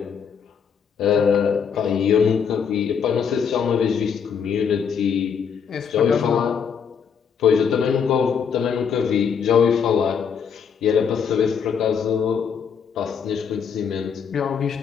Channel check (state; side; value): quieter; right; 6.9 dB